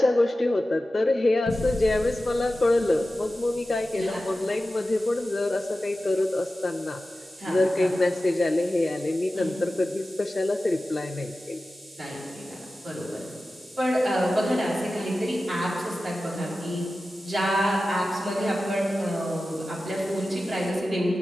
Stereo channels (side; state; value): both; normal; correlation 0.94